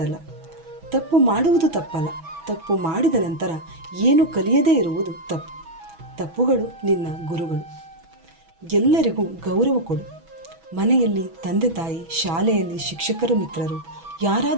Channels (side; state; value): left; late; 6.1 ms